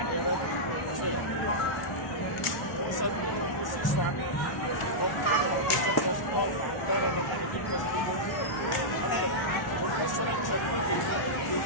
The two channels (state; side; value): late; right; 1.0 ms